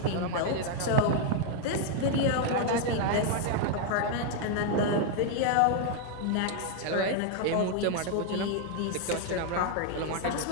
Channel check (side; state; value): both; different; correlation 0.00